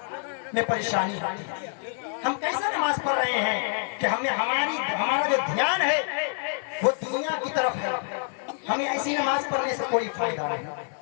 میں پریشانی ہوتی ہے۔ ہم کیسا نماز پڑھ رہے ہیں کہ ہمارا جو دھیان ہے وہ دنیا کی طرف ہے، ہمیں ایسی نماز پڑھنے سے کوئی فائدہ نہیں۔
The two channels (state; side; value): silent; right; 58 dB below the other